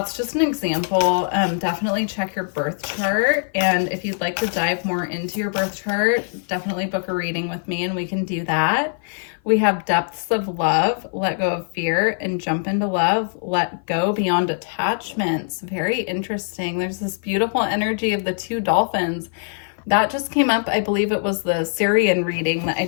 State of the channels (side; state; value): right; silent; 55 dB below the other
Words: just an example. Definitely check your birth chart. And if you'd like to dive more into your birth chart, definitely book a reading with me and we can do that. We have depths of love, let go of fear, and jump into love, let go beyond attachments. Very interesting. There's this beautiful energy of the 2 dolphins. That just came up. I believe it was the Sirian reading that I